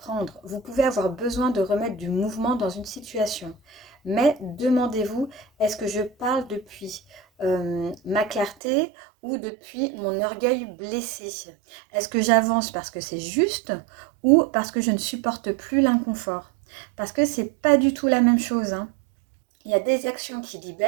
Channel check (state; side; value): drops out; left; at 8.6 s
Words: vous pouvez avoir besoin de remettre du mouvement dans une situation. Mais demandez-vous, est-ce que je parle depuis ma clarté ou depuis mon orgueil blessé? Est-ce que j'avance parce que c'est juste ou parce que je ne supporte plus l'inconfort? Parce que c'est pas du tout la même chose, hein. Il y a des actions qui